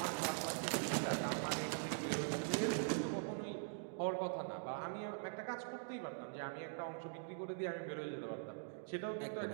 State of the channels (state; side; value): silent; left; digital silence